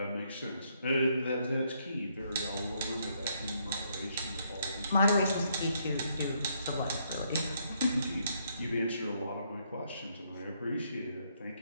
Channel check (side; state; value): both; inverted; correlation -0.73